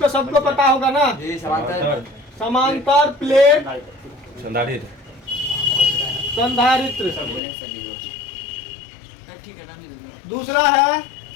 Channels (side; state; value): right; drops out; at 7.4 s